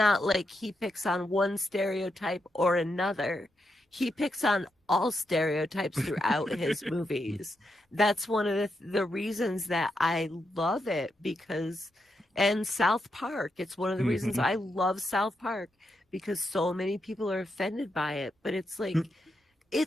like he picks on one stereotype or another. He picks on all stereotypes throughout his movies. That's one of the reasons that I love it and South Park. It's one of the reasons I love South Park because so many people are offended by it. But it's like,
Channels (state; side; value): normal; both; correlation 0.83